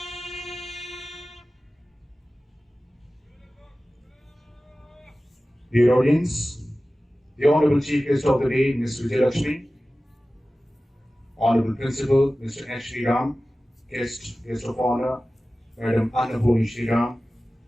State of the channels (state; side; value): normal; both; correlation 0.96